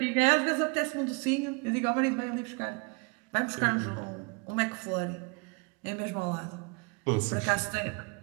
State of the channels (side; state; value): left; quieter; 32.0 dB